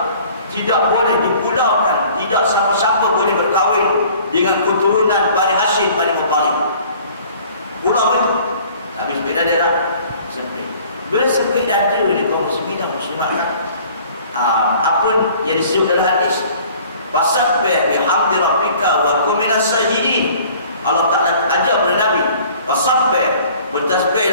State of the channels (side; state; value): both; inverted; correlation -0.51